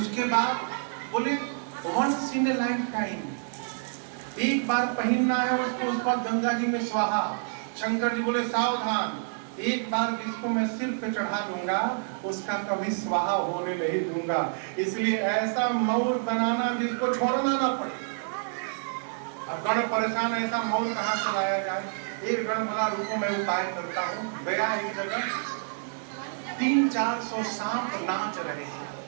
बाद बोले once in a lifetime, एक बार पहनना है उसको, उस पर गंगा जी में स्वाहा। शंकर जी बोले सावधान, एक बार जिसको मैं सिर पे चढ़ा दूंगा उसका कभी स्वाहा होने नहीं दूंगा। इसलिए ऐसा मौर बनाना जिसको छोड़ना ना पड़े। अब गण परेशान, ऐसा मौर कहाँ से लाया जाए। एक गण बोला रुको मैं उपाय करता हूँ। गया एक जगह 300-400 सांप नाच रहे हैं।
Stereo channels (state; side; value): silent; left; digital silence